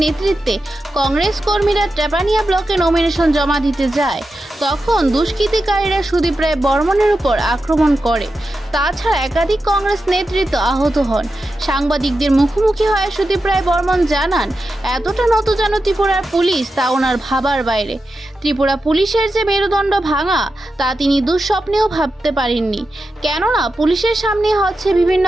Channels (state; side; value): normal; both; correlation 0.90